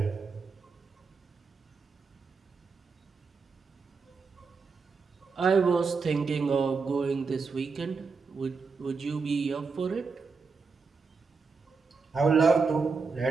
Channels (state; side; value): quieter; left; 4.8 dB